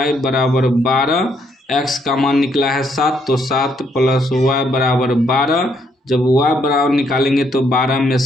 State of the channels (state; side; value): normal; both; correlation 0.72